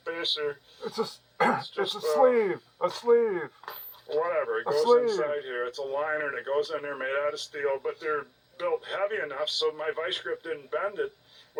It's a sleeve. A sleeve. Whatever. It goes inside here. It's a liner that goes in there, made out of steel, but they're built heavy enough so my vice grip didn't bend it,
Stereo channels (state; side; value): identical; both; correlation 1.00